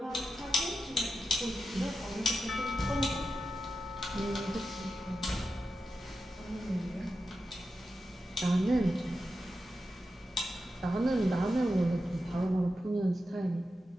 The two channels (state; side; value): normal; both; correlation 0.90